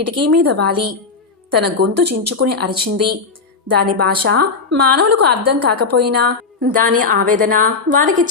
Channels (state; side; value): quieter; right; 4.6 dB